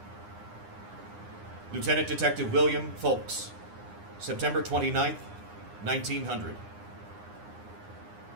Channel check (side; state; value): left; late; 9.8 ms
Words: Lieutenant Detective William Folks. September 29th, 1900.